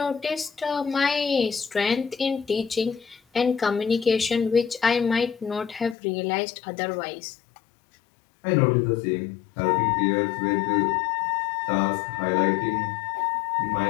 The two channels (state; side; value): drops out; right; at 6.0 s